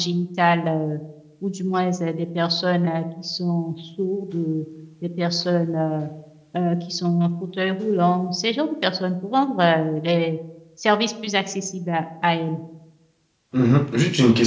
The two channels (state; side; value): identical; both; correlation 1.00